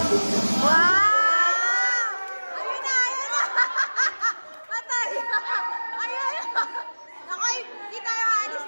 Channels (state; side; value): inverted; both; correlation -1.00